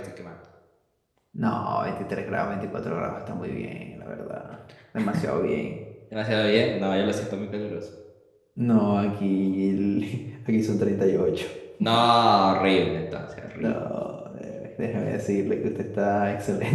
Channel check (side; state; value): both; identical; correlation 1.00